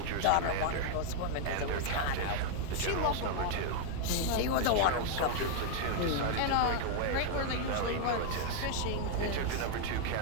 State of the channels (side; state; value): both; different; correlation 0.00